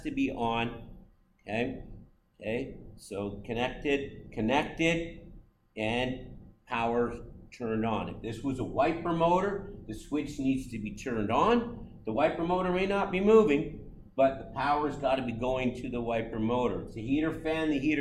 to be on, okay? Okay, so connected, and power turned on. If this was a wiper motor, the switch needs to be turned on. The wiper motor may not be moving, but the power's got to be going to the wiper motor. It's a heater fan, the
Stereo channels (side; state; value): both; identical; correlation 1.00